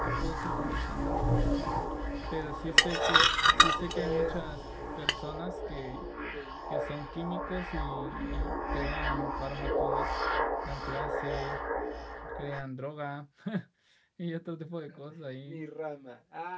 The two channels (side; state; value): both; identical; correlation 1.00